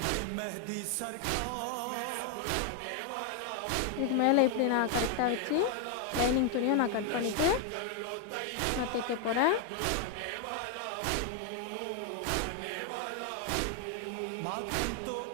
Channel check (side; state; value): both; different; correlation 0.00